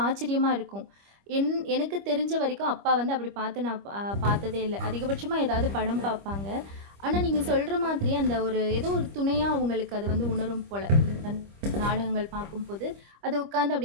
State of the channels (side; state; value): left; late; 25 ms